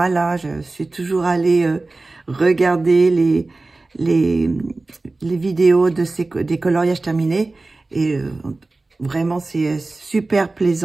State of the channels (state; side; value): quieter; left; 3.3 dB